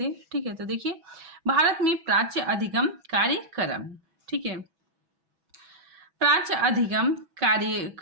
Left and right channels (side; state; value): left; late; 6.1 ms